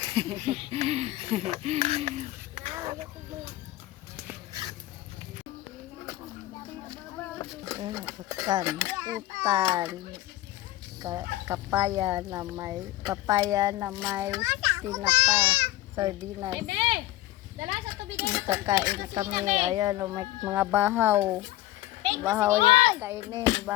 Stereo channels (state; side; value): quieter; right; 16.1 dB